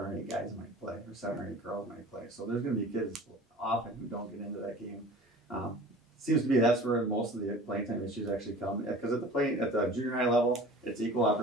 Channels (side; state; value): both; normal; correlation 0.42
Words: 8 guys might play, or 7 or 8 girls might play. So there's going to be kids often who don't get into that game. Seems to be that's where most of the playing time issues actually come, because at the junior high level, it's equal